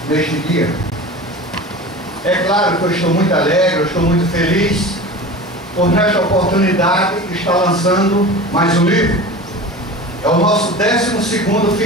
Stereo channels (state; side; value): normal; both; correlation 0.34